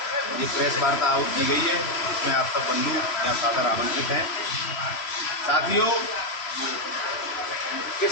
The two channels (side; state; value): right; late; 3.0 ms